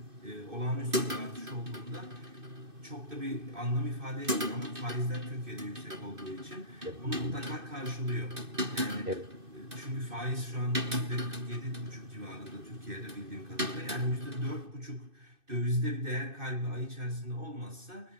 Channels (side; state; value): left; late; 2.6 ms